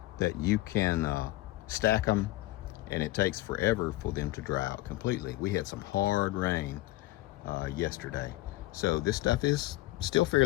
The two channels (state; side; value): quieter; right; 18.0 dB